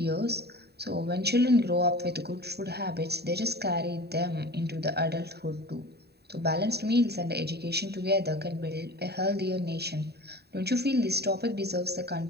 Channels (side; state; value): left; late; 0.47 ms